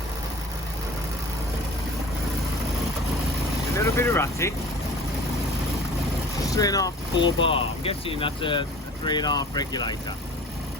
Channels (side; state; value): both; normal; correlation 0.43